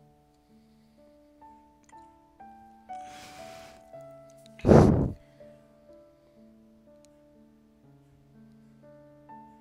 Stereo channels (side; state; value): both; identical; correlation 1.00